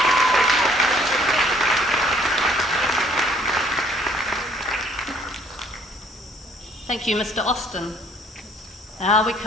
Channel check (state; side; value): normal; both; correlation 0.60